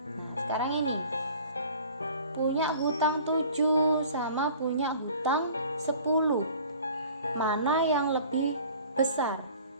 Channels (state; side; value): inverted; both; correlation -0.48